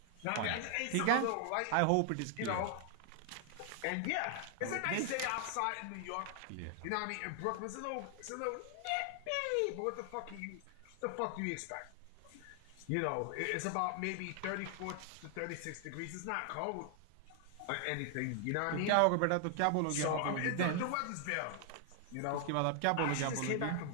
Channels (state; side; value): different; both; correlation 0.00